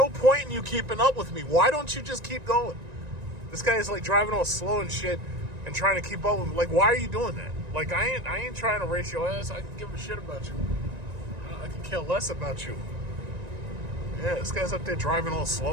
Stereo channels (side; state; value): left; late; 1.9 ms